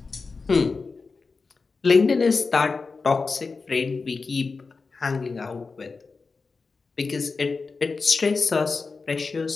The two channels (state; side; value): quieter; right; 4.4 dB